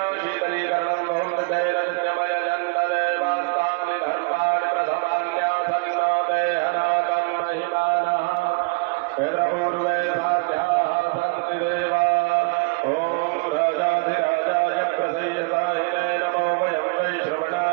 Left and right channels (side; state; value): left; quieter; 30.9 dB